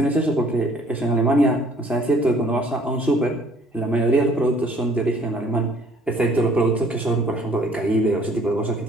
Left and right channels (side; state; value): both; normal; correlation 0.58